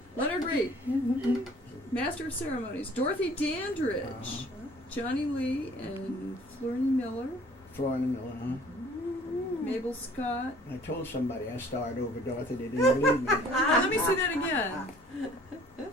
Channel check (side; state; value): both; normal; correlation 0.53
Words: Leonard Reed, Master of Ceremonies. Dorothy Dandridge, Johnny Lee, and Florence Miller. Florence Miller, huh? Mabel Scott. I told somebody I starred over Dorothy. They didn't believe me. Oh, let me see that again.